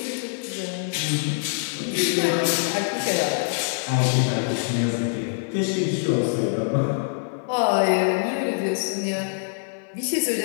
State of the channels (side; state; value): right; silent; 62 dB below the other